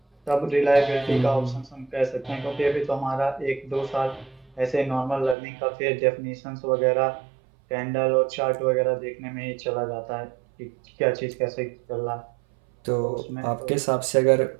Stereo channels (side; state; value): left; drops out; at 5.4 s